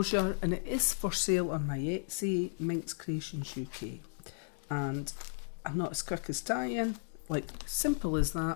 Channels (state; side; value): silent; right; digital silence